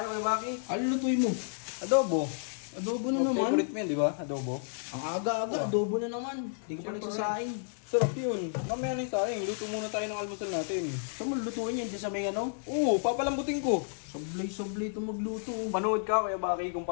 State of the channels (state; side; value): silent; right; digital silence